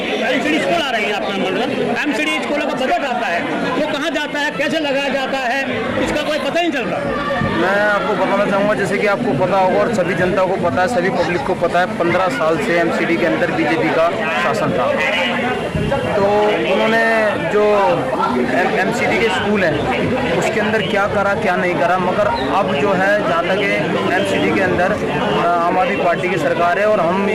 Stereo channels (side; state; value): both; identical; correlation 1.00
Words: एमसीडी स्कूल आ रही है आपका मतलब, एमसीडी स्कूलों का बजट आता है, वो कहाँ जाता है, कैसे लगाया जाता है, इसका कोई पता नहीं चल रहा। मैं आपको बताना चाहूँगा, जैसे कि आपको पता होगा और सभी जनता को पता है, सभी पब्लिक को पता है, 15 साल से एमसीडी के अंदर बीजेपी का शासन था। तो उन्होंने जो एमसीडी के स्कूल हैं उसके अंदर क्या करा क्या नहीं करा, मगर अब जो है जहाँ तक एमसीडी के अंदर आम आदमी पार्टी की सरकार है और हम